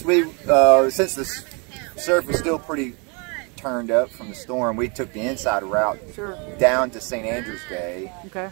since the surf was still pretty turned up from the storm, we took the inside route down to St. Andrew's Bay,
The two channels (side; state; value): left; quieter; 33.3 dB